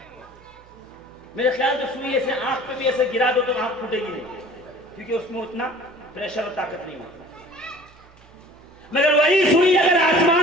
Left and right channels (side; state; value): right; noise; hum, 26 dB below the sound